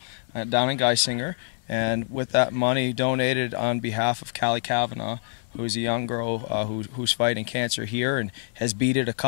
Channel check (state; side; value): silent; right; digital silence